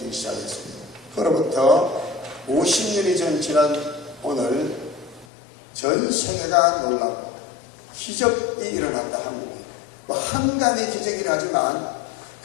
시작했습니다. 그로부터 50년이 지난 오늘 전 세계가 놀라고 기적이 일어났다. 한국에 한강의 기적이라 하지만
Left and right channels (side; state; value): right; drops out; at 5.2 s